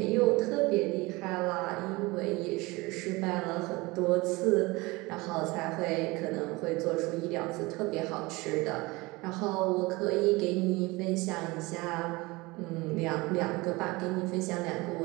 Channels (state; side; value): quieter; left; 23.0 dB